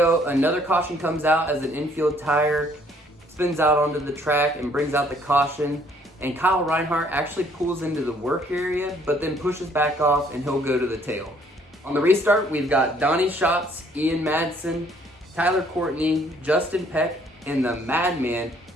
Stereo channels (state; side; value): normal; both; correlation 0.62